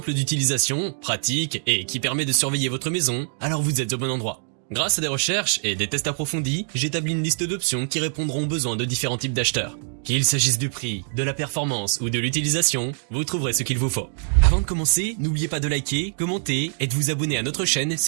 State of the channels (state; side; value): silent; left; digital silence